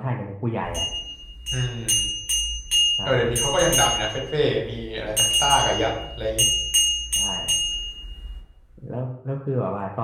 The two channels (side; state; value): both; identical; correlation 1.00